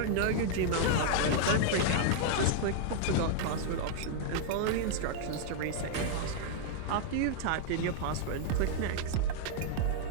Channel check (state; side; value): different; both; correlation 0.00